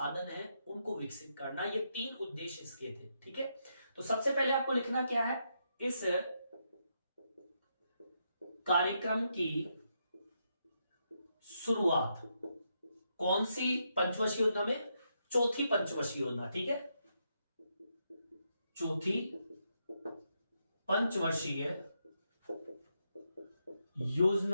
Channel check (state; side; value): inverted; both; correlation -0.81